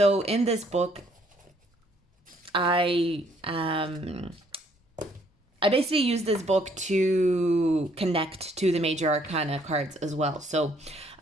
in this book, I basically use this book to connect to the major arcana cards as well. So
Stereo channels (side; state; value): both; normal; correlation 0.65